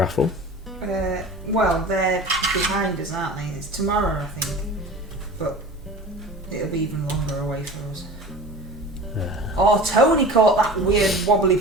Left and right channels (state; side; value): normal; both; correlation 0.37